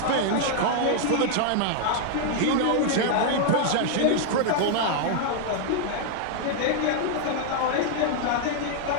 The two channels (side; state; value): both; different; correlation 0.00